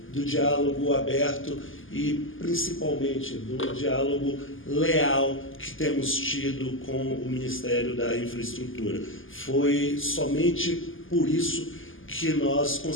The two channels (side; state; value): right; late; 0.58 ms